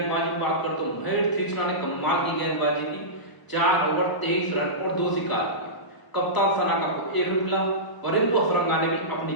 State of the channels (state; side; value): late; right; 1.0 ms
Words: बात करते तो महेश तीक्ष्णा ने कमाल की गेंदबाजी की। 4 ओवर 23 रन और 2 शिकार किए। कप्तान सनाका को 1 विकेट मिला। वरिंदु हसरंगा ने भी अपनी